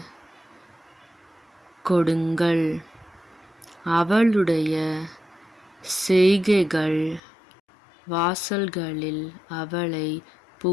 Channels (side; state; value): right; drops out; at 7.2 s